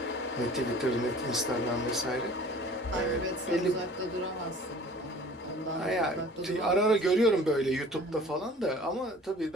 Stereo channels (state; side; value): normal; both; correlation 0.47